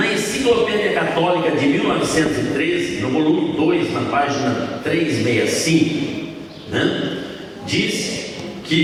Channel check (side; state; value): both; identical; correlation 1.00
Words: Enciclopédia Católica de 1913, no volume 2, na página 365, diz